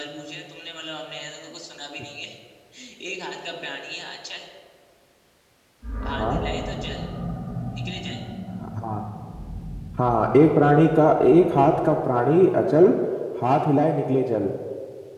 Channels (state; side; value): identical; both; correlation 1.00